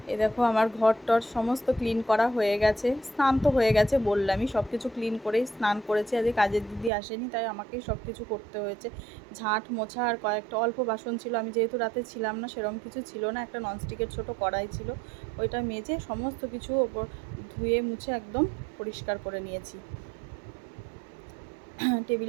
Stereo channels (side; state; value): left; drops out; at 6.9 s